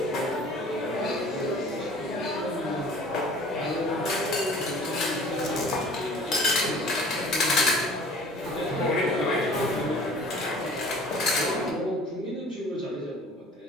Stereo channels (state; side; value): normal; both; correlation 0.47